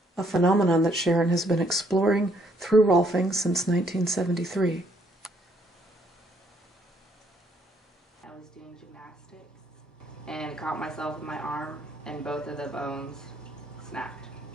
a phenomenon that Sharon has been exploring through Rolfing since 1973. I was doing gymnastics and caught myself with my arm, and both of the bones snapped.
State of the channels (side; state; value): both; normal; correlation 0.68